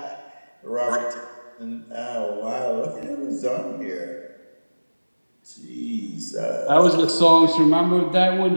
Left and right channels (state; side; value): inverted; both; correlation -1.00